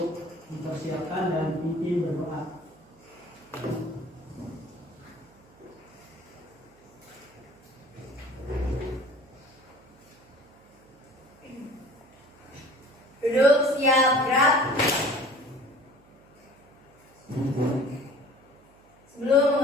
mempersiapkan dan pimpin berdoa. Duduk, siap, gerak. Sebelum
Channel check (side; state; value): right; noise; hum, 29 dB below the sound